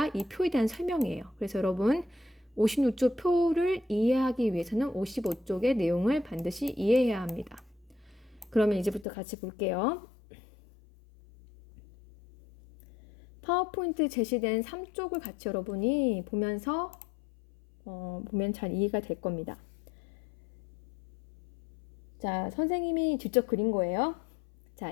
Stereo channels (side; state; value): right; drops out; at 9.1 s